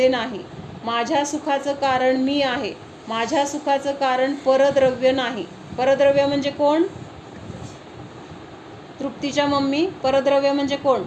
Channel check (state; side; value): identical; both; correlation 1.00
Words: नाही, माझ्या सुखाचं कारण मी आहे, माझ्या सुखाचं कारण परद्रव्य नाही. परद्रव्य म्हणजे कोण? तृप्तीच्या मम्मी, परद्रव्य म्हणजे कोण?